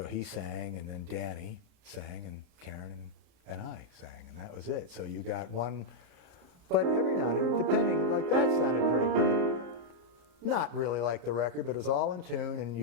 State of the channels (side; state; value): left; late; 34 ms